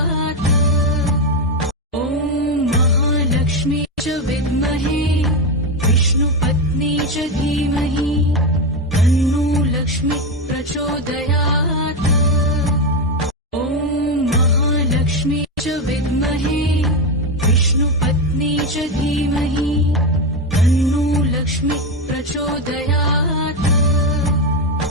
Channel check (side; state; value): both; normal; correlation 0.11